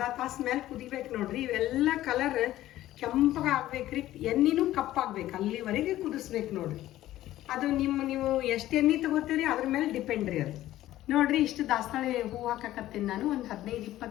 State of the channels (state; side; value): quieter; right; 14.4 dB